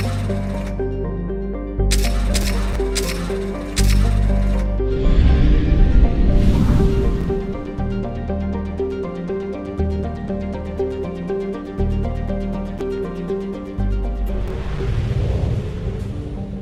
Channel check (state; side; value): identical; both; correlation 1.00